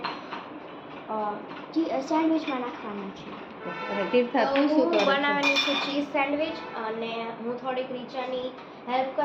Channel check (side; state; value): both; identical; correlation 1.00